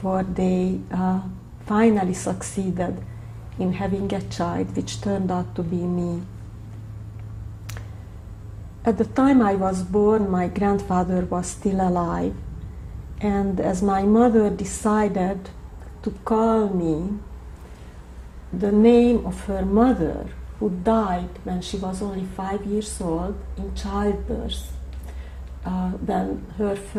they finally succeeded in having a child, which turned out to be me. At the time I was born, my grandfather was still alive, and as my mother decided to call me the name of her mother, who died when she was only 5 years old in childbirth, when her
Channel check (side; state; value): both; identical; correlation 1.00